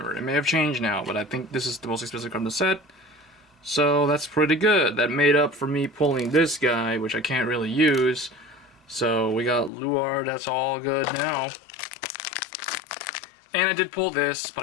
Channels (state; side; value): drops out; right; at 9.7 s